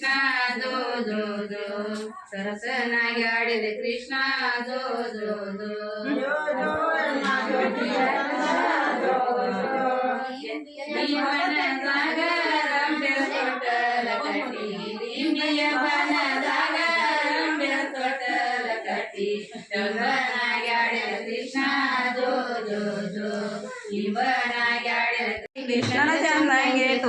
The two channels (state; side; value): identical; both; correlation 1.00